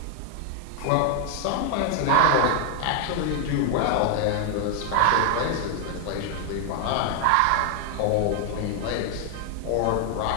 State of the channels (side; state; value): both; different; correlation 0.00